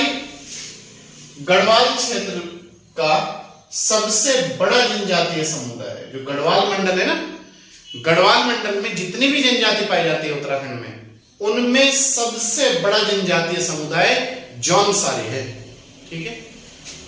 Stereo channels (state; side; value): identical; both; correlation 1.00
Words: गढ़वाल क्षेत्र का सबसे बड़ा जनजातीय समुदाय है। जो गढ़वाल मंडल है ना, गढ़वाल मंडल में जितनी भी जनजाति पाई जाती है उत्तराखंड में, उनमें सबसे बड़ा जनजातीय समुदाय जौनसारी है। ठीक है,